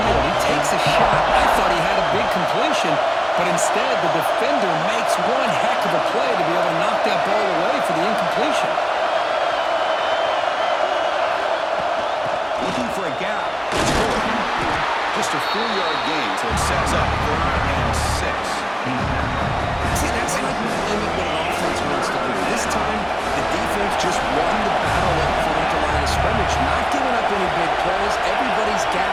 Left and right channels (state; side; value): identical; both; correlation 1.00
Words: He takes a shot. I thought he had a big completion, Instead, the defender makes one heck of a play to be able to knock that ball away for the incompletion. Looking for a gap. It's good. Just a 4-yard gain, so it sets up 3rd and 6. See, that's how you limit what an offense wants to do. This time, the defense just won the battle up front at the line of scrimmage, not giving up any big plays. Everybody's